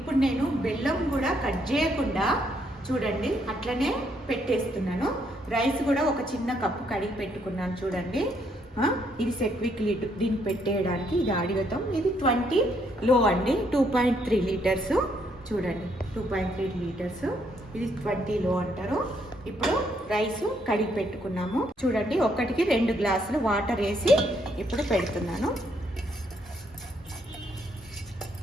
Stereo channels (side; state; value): both; normal; correlation 0.72